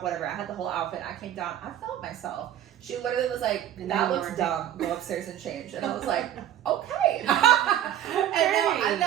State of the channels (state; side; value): quieter; left; 11.1 dB